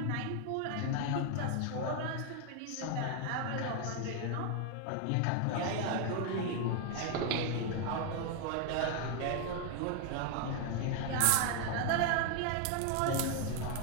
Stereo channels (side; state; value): both; different; correlation 0.00